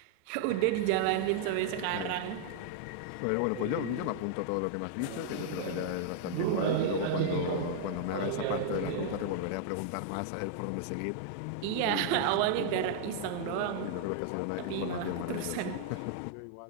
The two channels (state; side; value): different; both; correlation -0.01